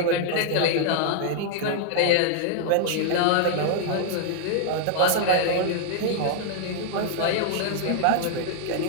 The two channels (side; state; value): both; different; correlation 0.00